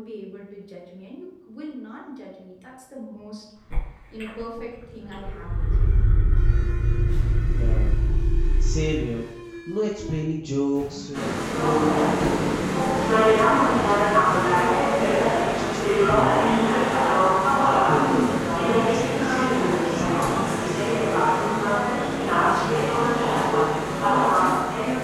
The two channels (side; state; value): both; identical; correlation 1.00